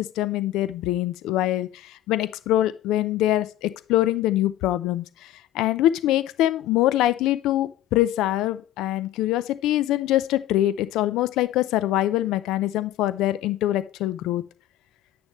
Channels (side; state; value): right; quieter; 13.6 dB